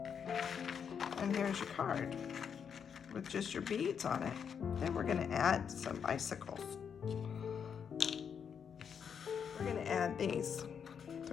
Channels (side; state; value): right; quieter; 7.2 dB